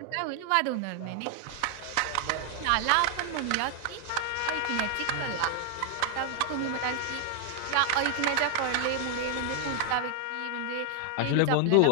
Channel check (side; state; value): both; different; correlation 0.00